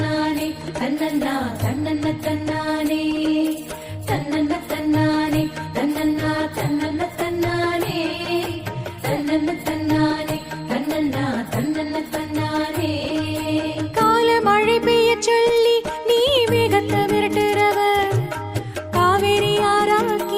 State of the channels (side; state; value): both; identical; correlation 1.00